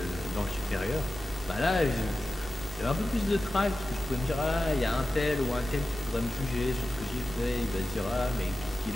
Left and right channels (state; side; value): normal; both; correlation 0.93